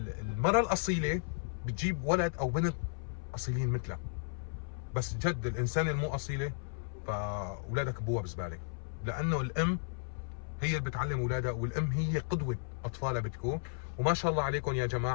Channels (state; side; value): silent; right; 55 dB below the other